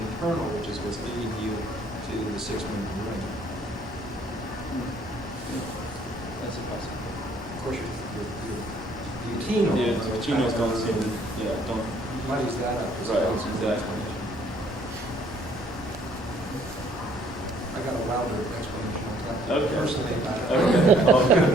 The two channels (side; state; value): both; normal; correlation 0.62